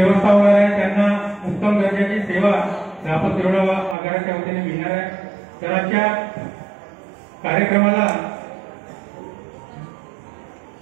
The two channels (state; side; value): drops out; left; at 4.0 s